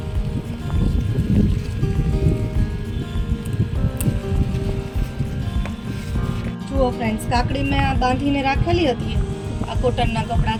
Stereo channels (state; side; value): identical; both; correlation 1.00